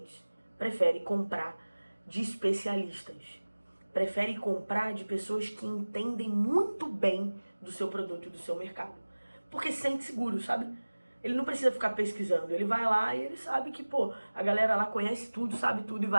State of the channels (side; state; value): both; inverted; correlation -1.00